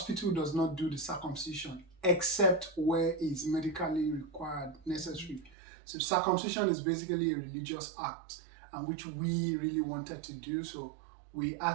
does not do the circumcision except where it's medically required, necessary. So circumcision is basically a religious act, and which we really wanted to do. So we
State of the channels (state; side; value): drops out; left; at 5.6 s